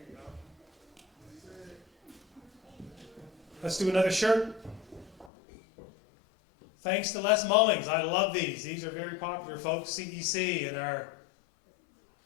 Let's do another shirt. Thanks to Les Mullings. I love these. These are very popular, folks. CEC and our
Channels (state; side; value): drops out; right; at 5.3 s